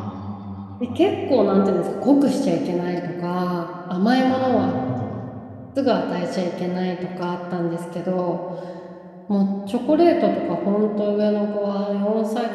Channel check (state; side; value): identical; both; correlation 1.00